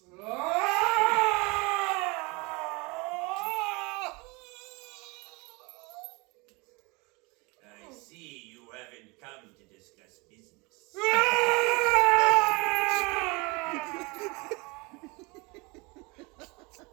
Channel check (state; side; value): quieter; left; 27.2 dB